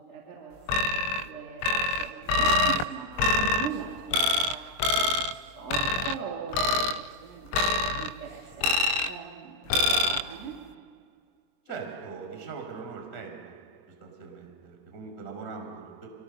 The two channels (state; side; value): late; right; 23 ms